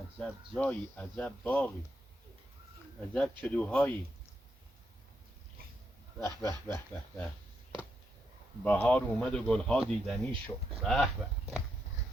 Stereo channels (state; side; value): normal; both; correlation 0.81